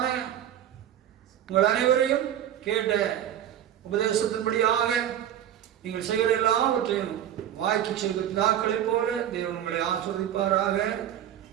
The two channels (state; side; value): quieter; left; 10.8 dB